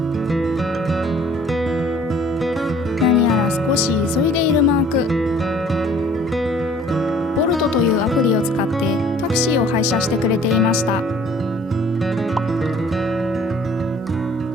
何やら少し急いでいるマーク。ボルトというアプリを使ってタクシーを配車してくれていました。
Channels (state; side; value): normal; both; correlation 0.54